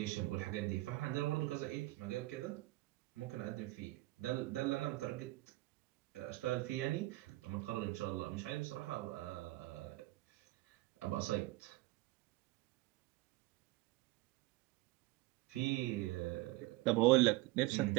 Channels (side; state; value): left; quieter; 20.1 dB